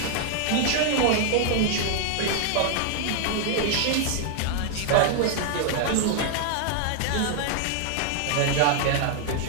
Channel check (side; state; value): both; different; correlation 0.00